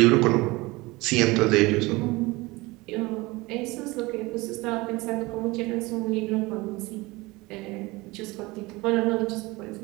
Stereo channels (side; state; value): left; quieter; 22.3 dB